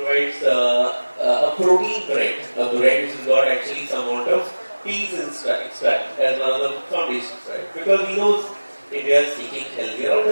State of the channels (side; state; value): both; inverted; correlation -1.00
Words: a protein bread, a bread which has got actually some amount of peas extract as one of the foundations, right? Because he knows India is seeking healthier